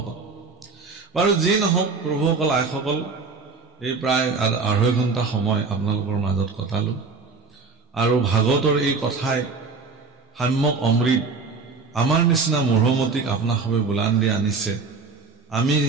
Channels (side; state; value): left; quieter; 4.5 dB